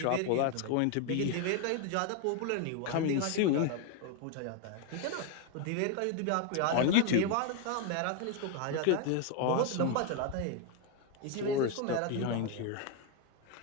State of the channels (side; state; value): both; different; correlation 0.01